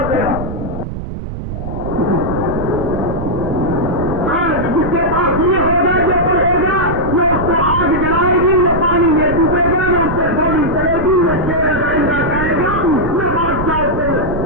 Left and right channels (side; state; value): right; noise; rumble, 7 dB below the sound